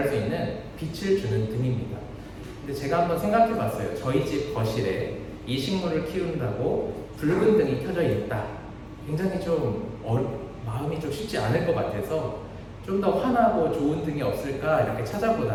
수 있는 빛을 주는 등입니다. 근데 제가 한번 생각해 봤어요. 저희 집 거실에 이 식물을 키운다고 붉은 등이 켜져 있다. 굉장히 좀 마음이 좀 쉽지 않을 것 같아서 좀 더 환하고 좋은 등이 없을까 이렇게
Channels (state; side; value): identical; both; correlation 1.00